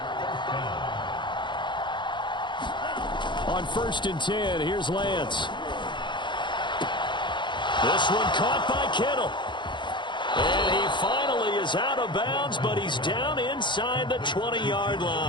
On 1st and 10, here's Lance. This one caught by Kittle. And he finally is out of bounds, but he's down inside the 20-yard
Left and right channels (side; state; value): right; late; 0.23 ms